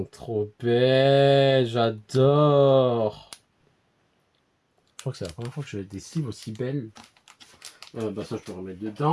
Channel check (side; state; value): both; identical; correlation 1.00